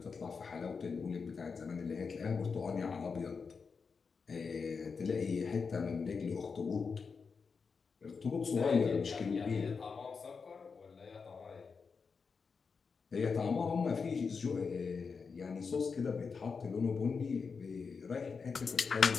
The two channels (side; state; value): right; quieter; 5.3 dB